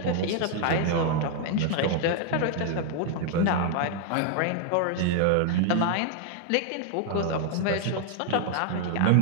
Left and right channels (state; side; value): different; both; correlation 0.00